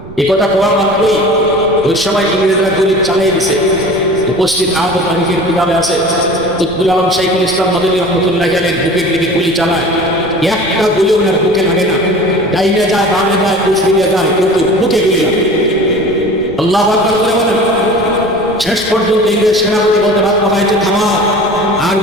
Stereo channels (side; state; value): right; noise; rumble, 18 dB below the sound